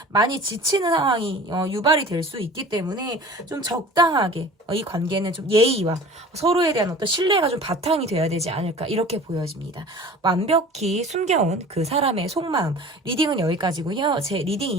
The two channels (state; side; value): normal; both; correlation 0.42